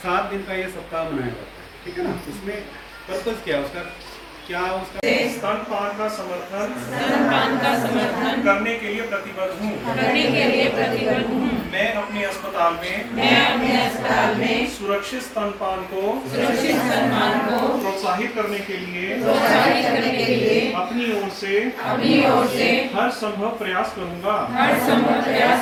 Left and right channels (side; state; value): both; identical; correlation 1.00